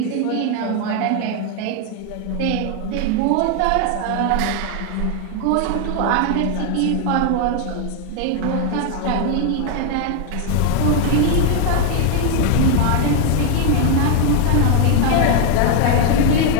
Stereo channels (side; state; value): both; different; correlation 0.00